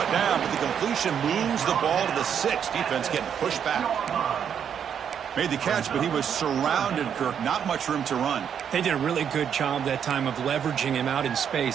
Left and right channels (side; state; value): left; quieter; 8.2 dB